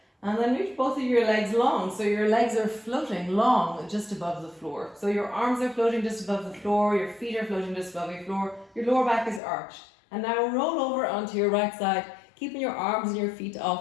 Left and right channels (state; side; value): drops out; right; at 9.4 s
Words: And then reach both of your legs long, so your legs are floating long just above the floor. So your arms are floating just above the floor, your feet are floating just above your floor, your lower back is arched. And now roll over onto your right side, keeping your arms and your feet